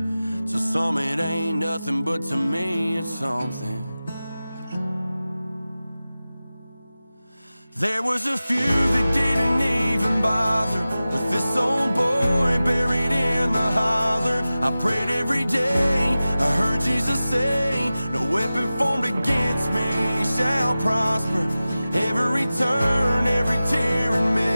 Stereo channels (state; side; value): inverted; both; correlation -0.96